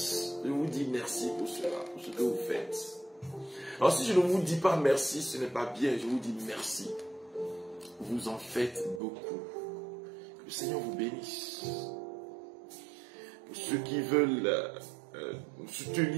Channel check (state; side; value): drops out; left; at 9.0 s